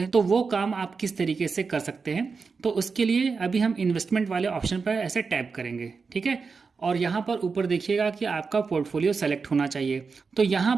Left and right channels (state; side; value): quieter; left; 4.9 dB